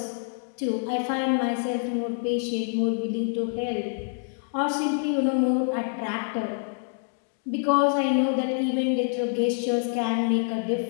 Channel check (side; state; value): right; silent; digital silence